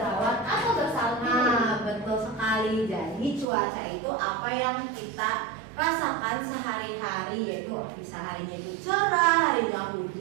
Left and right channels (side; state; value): left; drops out; at 3.5 s